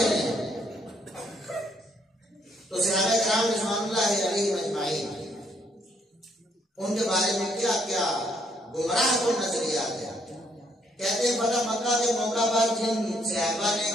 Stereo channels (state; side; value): normal; both; correlation 0.70